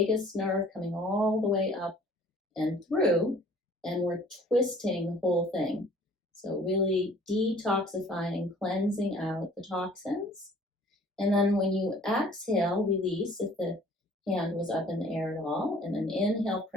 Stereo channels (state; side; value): normal; both; correlation 0.53